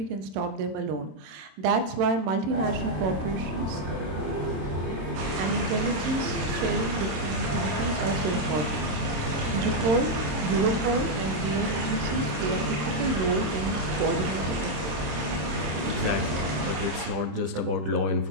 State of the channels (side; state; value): left; late; 26 ms